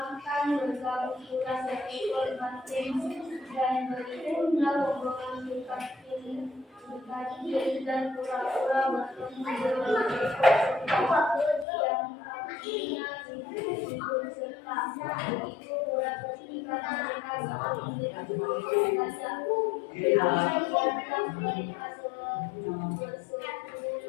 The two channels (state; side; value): drops out; right; at 11.7 s